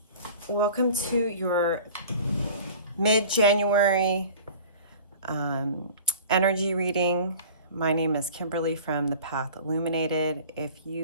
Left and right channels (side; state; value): both; inverted; correlation -0.42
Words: welcome to your mid-January energy reading. My name is Kimberly from the Path Illuminated. If